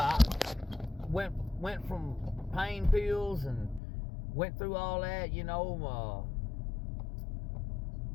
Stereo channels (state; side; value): drops out; right; at 3.8 s